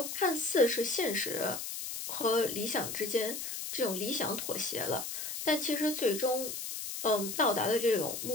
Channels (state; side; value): noise; left; hiss, 6 dB below the sound